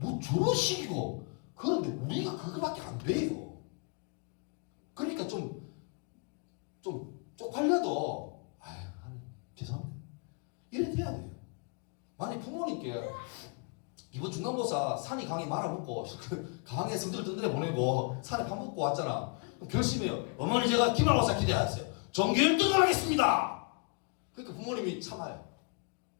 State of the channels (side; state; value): right; quieter; 36.3 dB